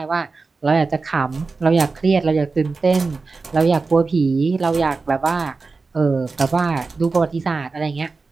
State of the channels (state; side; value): quieter; left; 4.1 dB